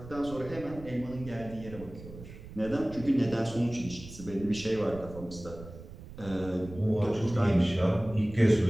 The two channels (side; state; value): right; noise; rumble, 15 dB below the sound